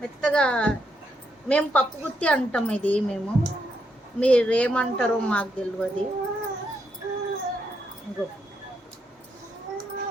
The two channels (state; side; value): normal; both; correlation 0.79